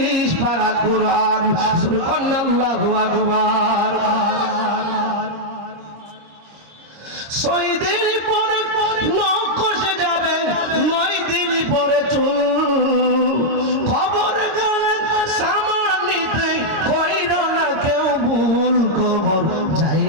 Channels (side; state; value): left; late; 26 ms